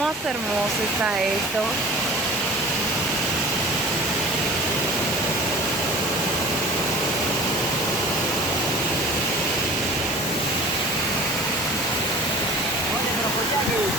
hermoso está esto.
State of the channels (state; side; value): normal; both; correlation 0.41